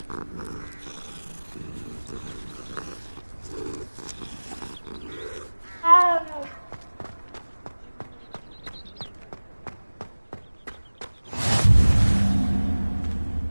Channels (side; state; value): both; inverted; correlation -1.00